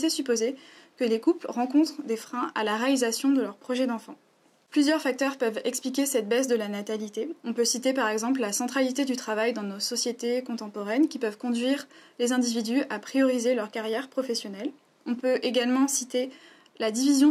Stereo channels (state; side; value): identical; both; correlation 1.00